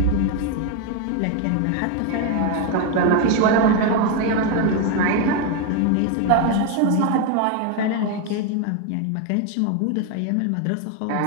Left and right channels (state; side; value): different; both; correlation 0.02